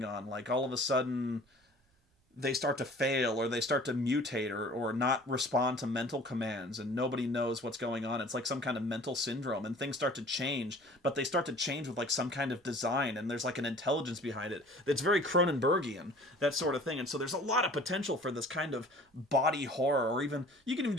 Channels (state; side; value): normal; both; correlation 0.47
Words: on, like all of a sudden they start to fail, or they start to mutate, or not respond to mental commands, and nobody knows what's going on. It's like some kind of mental syndrome, and things start to change, but they start to change with like some kind of design, and there's like an intelligence behind it. It's very Cronenbergian, that sort of thing. And so there's a lot of potential for this kind of body horror, or even, you can even